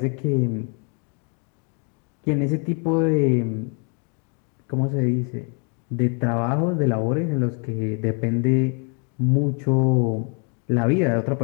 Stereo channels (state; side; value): quieter; right; 39.2 dB